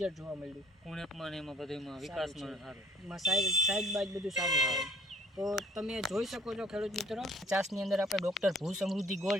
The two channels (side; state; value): both; normal; correlation 0.56